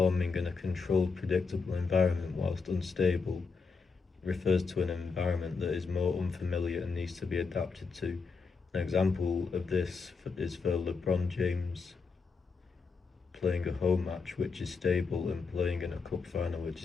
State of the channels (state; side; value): quieter; right; 4.8 dB